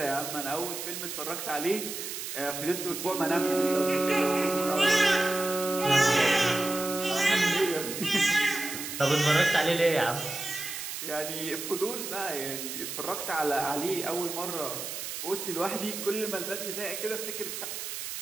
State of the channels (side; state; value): right; noise; hiss, 6 dB below the sound